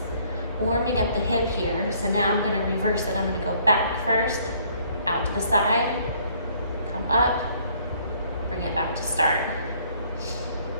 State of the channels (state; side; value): inverted; both; correlation -0.62